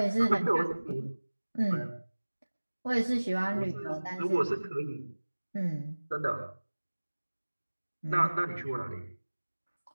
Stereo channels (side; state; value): both; inverted; correlation -1.00